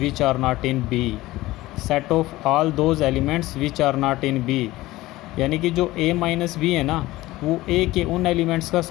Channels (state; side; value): quieter; right; 17.9 dB